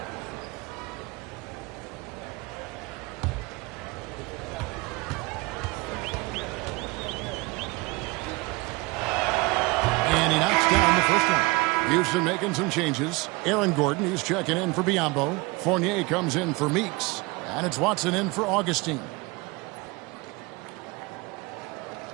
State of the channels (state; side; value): quieter; left; 24.7 dB